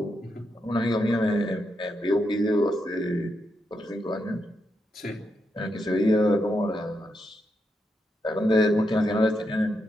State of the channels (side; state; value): both; normal; correlation 0.83